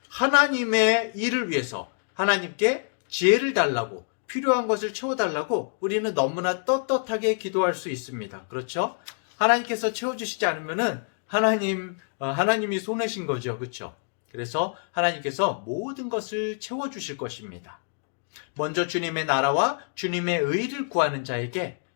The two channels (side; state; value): right; silent; digital silence